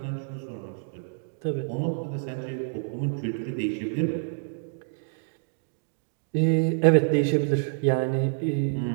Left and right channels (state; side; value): silent; left; digital silence